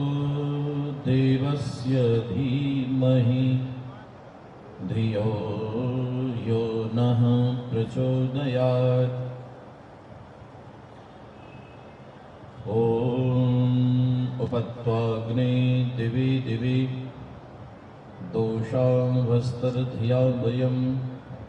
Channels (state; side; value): identical; both; correlation 1.00